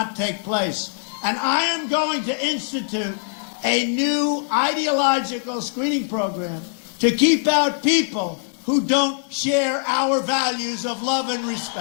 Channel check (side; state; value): right; silent; digital silence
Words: take place. And I am going to institute a new ideological screening program to keep out people who don't share our values of love and